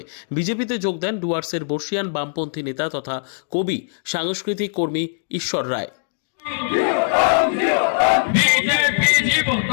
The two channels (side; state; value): right; silent; digital silence